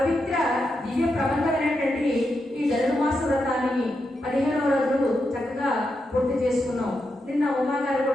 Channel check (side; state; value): both; normal; correlation 0.85